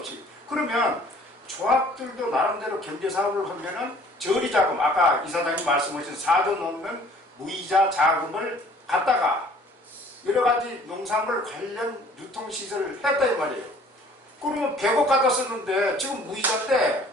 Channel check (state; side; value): normal; both; correlation 0.54